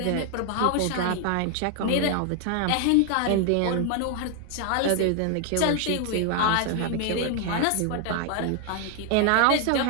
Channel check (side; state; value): both; different; correlation 0.00